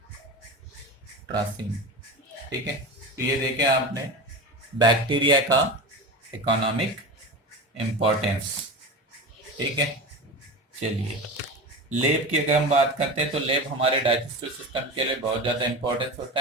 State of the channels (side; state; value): both; normal; correlation 0.27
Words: ठीक है, तो ये देखें आपने बैक्टीरिया का इकोनॉमिक इम्पोर्टेंस। ठीक है, चलिए लेब की अगर हम बात करते हैं तो लेब हमारे डाइजेस्टिव सिस्टम के लिए बहुत ज़्यादा इम्पोर्टेंस होता